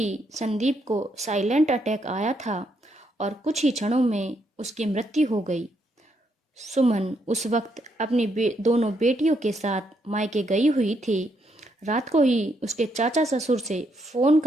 संदीप को साइलेंट अटैक आया था और कुछ ही क्षणों में उसकी मृत्यु हो गई। सुमन उस वक्त अपनी दोनों बेटियों के साथ मायके गई हुई थी। रात को ही उसके चाचा ससुर से फोन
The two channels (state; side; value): normal; both; correlation 0.76